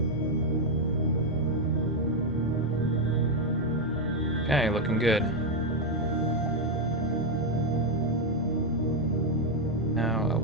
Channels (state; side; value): normal; both; correlation 0.03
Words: Okay, looking good. Now a